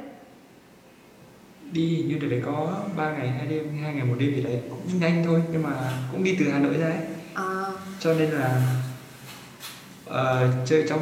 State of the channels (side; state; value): both; identical; correlation 1.00